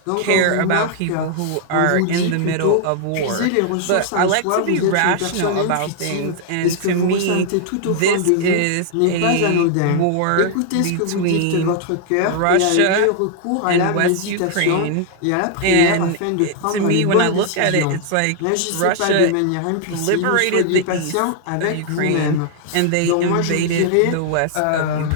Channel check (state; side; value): different; both; correlation 0.00